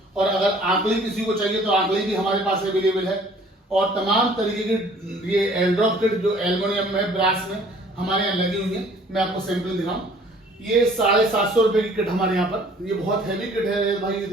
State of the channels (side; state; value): both; normal; correlation 0.54